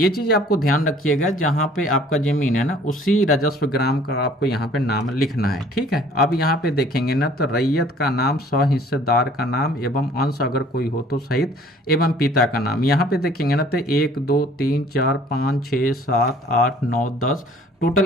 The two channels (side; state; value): both; normal; correlation 0.54